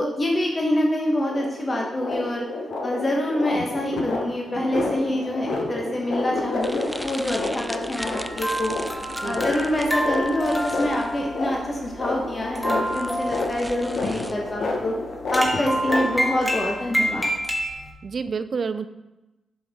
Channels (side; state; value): both; normal; correlation 0.89